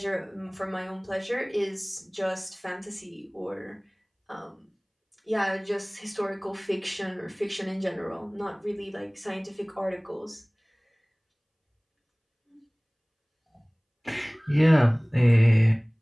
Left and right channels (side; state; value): both; identical; correlation 1.00